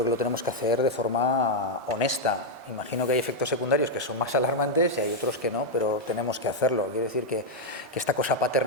que lo tenemos que hacer de forma honesta. Imagino que hay efectos secundarios que son más alarmantes y hay otros que no, pero tenemos que hacerlo. Quiero decir que esta cosa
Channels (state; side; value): normal; both; correlation 0.00